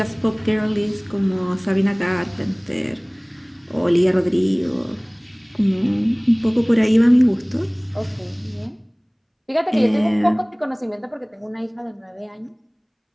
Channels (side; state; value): both; identical; correlation 1.00